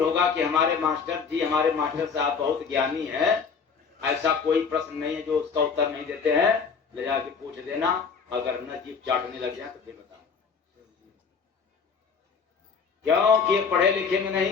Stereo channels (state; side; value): quieter; right; 5.7 dB